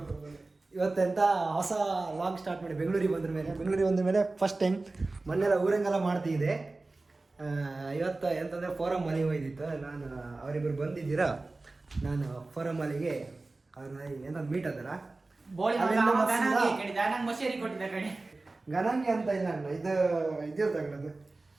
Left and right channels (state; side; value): quieter; left; 3.3 dB